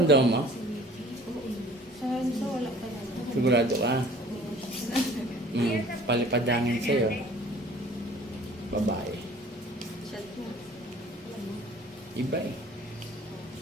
mo? Sa wala pa lang. Sigurado ka? Palipadangin sa'yo. Babae. Chat mo. Iba eh.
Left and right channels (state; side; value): normal; both; correlation 0.50